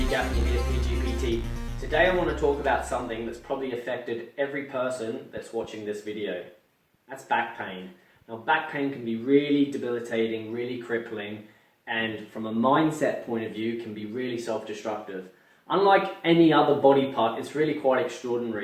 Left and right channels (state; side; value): identical; both; correlation 1.00